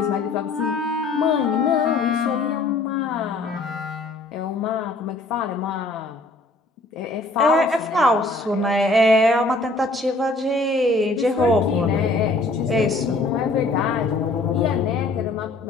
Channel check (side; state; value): right; quieter; 3.1 dB